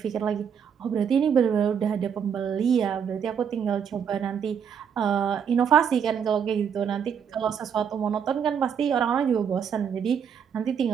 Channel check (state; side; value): quieter; left; 7.6 dB